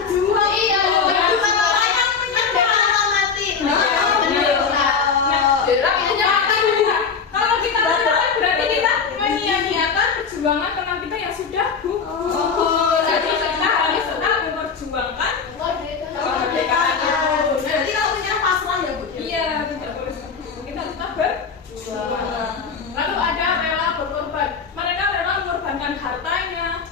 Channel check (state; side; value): quieter; right; 5.7 dB